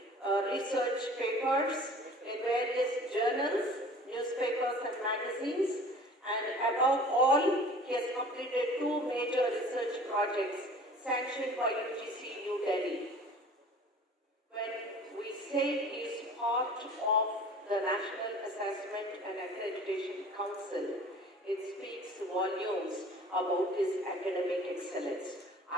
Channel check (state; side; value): normal; both; correlation 0.45